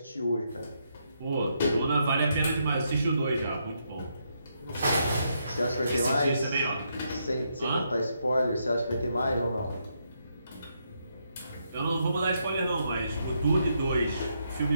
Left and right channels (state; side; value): inverted; both; correlation -0.78